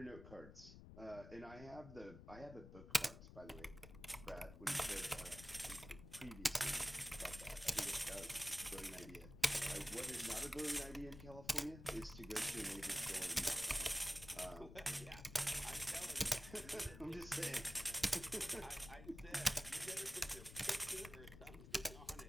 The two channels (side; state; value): left; noise; rumble, 14 dB below the sound